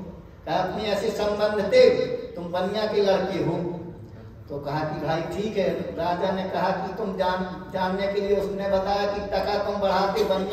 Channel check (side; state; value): both; identical; correlation 1.00